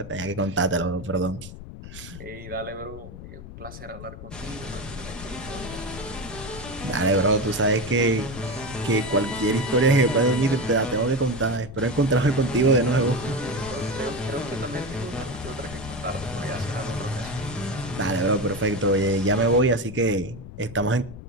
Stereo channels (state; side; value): noise; left; rumble, 13 dB below the sound